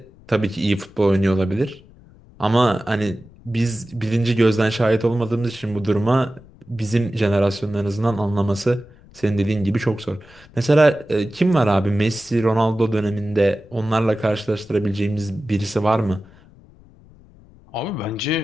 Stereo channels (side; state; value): left; noise; rumble, 25 dB below the sound